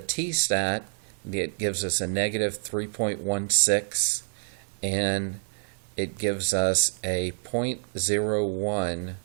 it gives us a negative 3.16, and it gives us a 0.01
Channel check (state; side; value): silent; left; 60 dB below the other